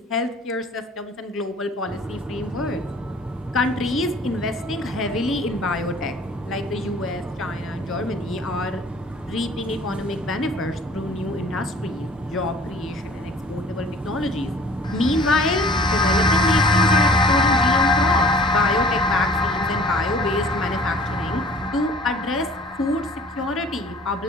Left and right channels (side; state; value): both; normal; correlation 0.50